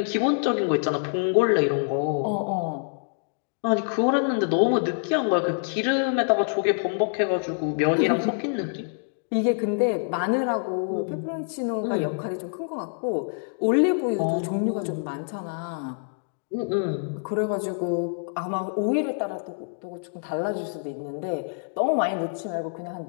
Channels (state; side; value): silent; right; digital silence